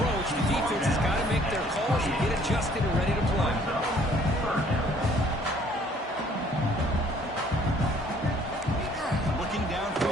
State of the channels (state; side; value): normal; both; correlation 0.59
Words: The defense has got to make their calls and get adjusted and ready to play. Looking